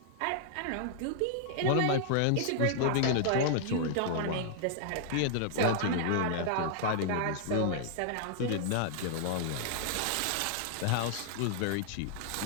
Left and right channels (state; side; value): different; both; correlation -0.01